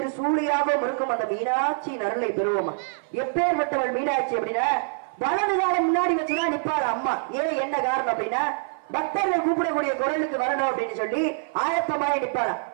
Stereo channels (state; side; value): silent; left; 57 dB below the other